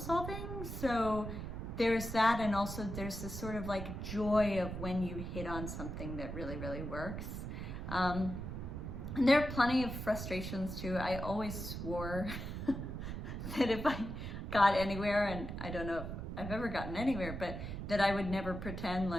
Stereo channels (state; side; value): noise; right; rumble, 6 dB below the sound